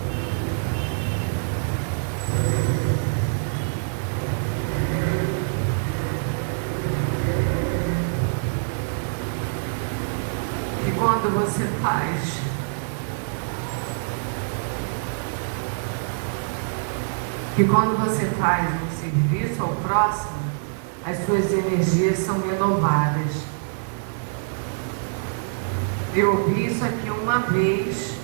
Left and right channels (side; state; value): left; silent; digital silence